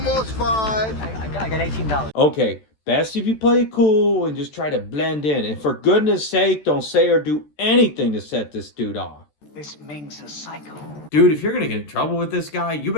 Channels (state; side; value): late; right; 14 ms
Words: $5. I got $18. Okay, best if you play it cool and just try to blend in. And for goodness sake, don't say or do anything to set this dude off. This Ming's a psycho. Dude, if you're going to get in trouble with this guy, you